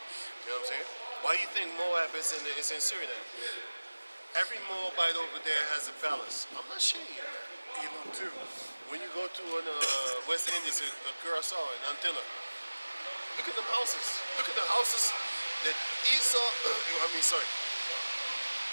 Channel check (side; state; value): both; inverted; correlation -1.00